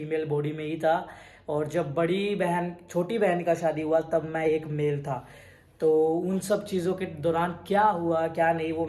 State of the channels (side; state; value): both; identical; correlation 1.00